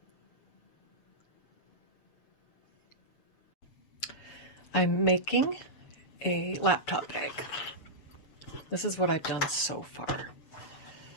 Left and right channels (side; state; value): right; late; 7.0 ms